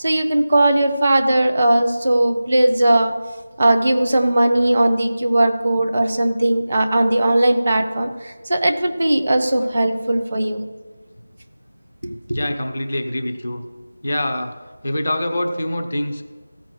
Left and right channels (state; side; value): inverted; both; correlation -0.95